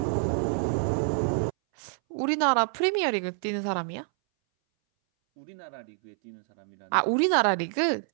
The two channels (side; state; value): left; silent; 60 dB below the other